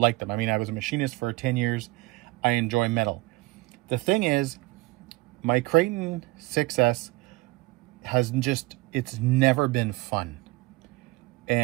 them. I mean, I was a machinist for 10 years. I enjoy metal. The thing is, my Kraton 6S has just, it's never been fun.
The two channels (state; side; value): quieter; left; 22.4 dB